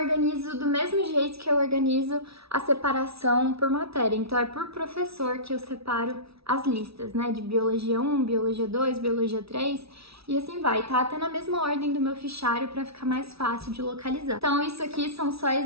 do mesmo jeito que eu organizo a separação por matéria. Então é por professor que eu separo as listas, né? De Biologia 1, Biologia 2, Biologia 3 e assim vai. Tá até na mesma ordem do meu fichário para ficar mais fácil de localizar. Então isso aqui são só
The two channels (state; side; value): late; left; 0.76 ms